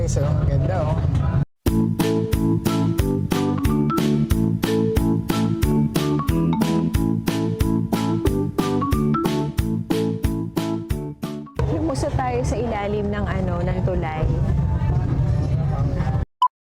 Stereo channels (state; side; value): identical; both; correlation 1.00